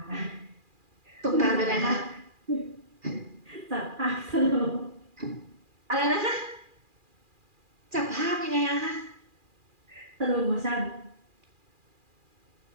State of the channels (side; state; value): left; late; 2.4 ms